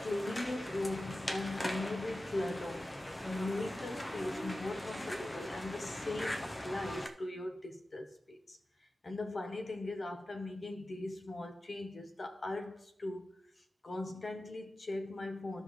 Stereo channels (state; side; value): normal; both; correlation 0.94